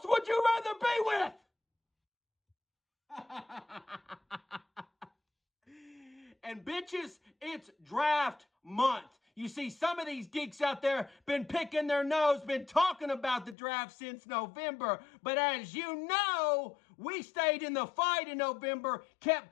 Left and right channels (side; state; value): right; drops out; at 13.6 s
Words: would you rather be with? And bitches, it's draft month. You see, some of these geeks out there been picking their nose, been talking about the draft since November. But as you know, we stayed in the fight in November,